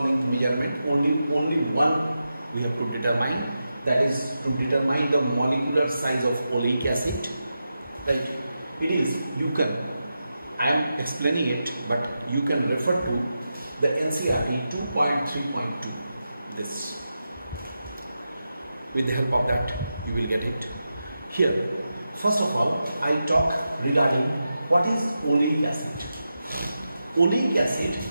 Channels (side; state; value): both; inverted; correlation -0.89